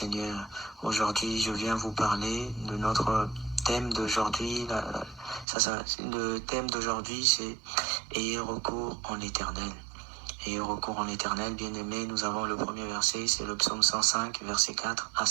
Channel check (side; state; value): left; drops out; at 5.5 s